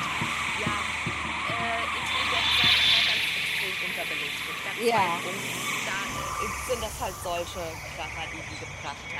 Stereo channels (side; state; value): both; identical; correlation 1.00